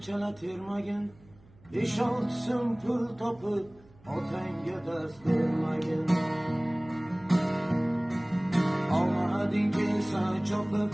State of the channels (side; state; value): right; noise; hum, 27 dB below the sound